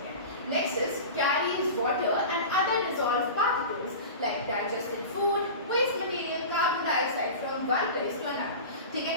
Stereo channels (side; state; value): both; inverted; correlation -0.31